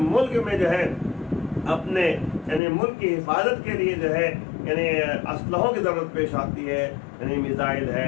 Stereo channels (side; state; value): right; drops out; at 2.6 s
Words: ملک میں جو ہے اپنے یعنی ملک کی حفاظت کے لیے جو ہے یعنی اسلحوں کی ضرورت پیش آتی ہے، یعنی میزائل